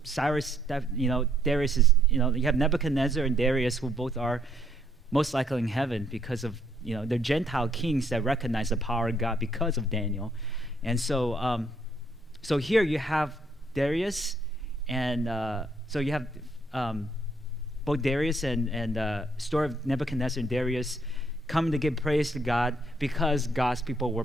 Darius is, you have Nebuchadnezzar and Darius, who both are most likely in heaven because of, they're Gentile kings that recognize the power of God because of Daniel. And so so here you have Darius, and so you have both Darius and story of Nebuchadnezzar and Darius coming to give praise to God because God's people were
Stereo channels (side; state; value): both; normal; correlation 0.69